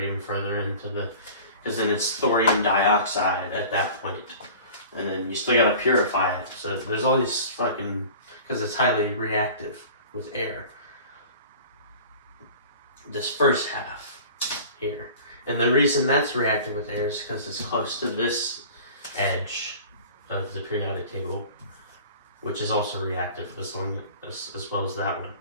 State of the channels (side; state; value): both; inverted; correlation -0.41